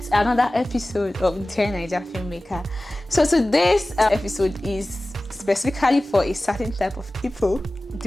another episode of Dear Naija filmmaker. So today's episode is specifically for a certain type of people,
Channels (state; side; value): normal; both; correlation 0.97